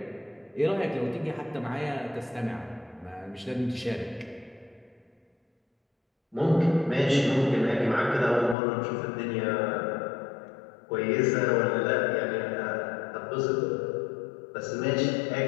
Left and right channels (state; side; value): drops out; right; at 8.6 s